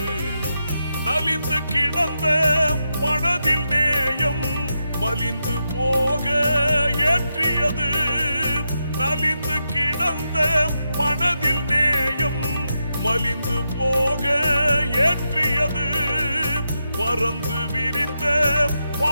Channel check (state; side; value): inverted; both; correlation -0.86